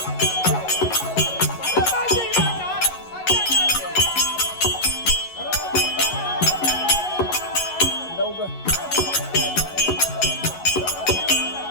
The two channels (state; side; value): late; right; 11 ms